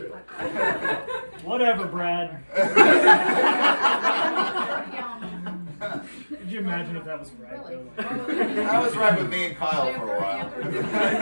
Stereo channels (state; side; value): inverted; both; correlation -1.00